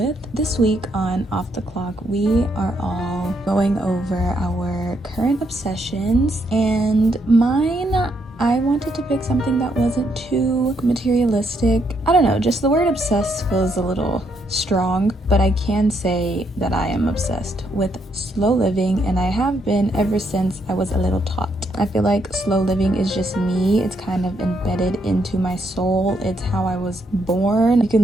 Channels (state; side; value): normal; both; correlation 0.75